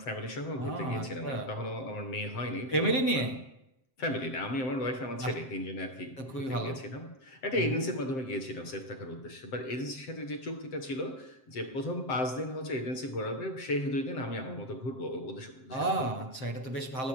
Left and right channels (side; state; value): right; late; 7.7 ms